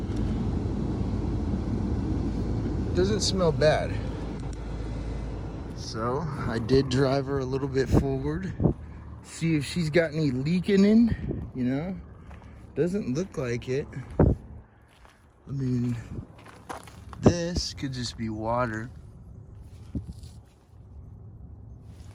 doesn't smell bad. So I did drive her a little bit forward, see if she's got any leaking in, you know. Doesn't look like it. I mean, this could just be water.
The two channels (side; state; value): both; identical; correlation 1.00